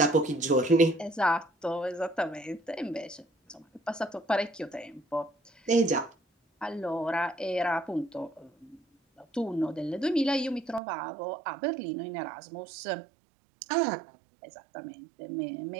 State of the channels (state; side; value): drops out; left; at 10.8 s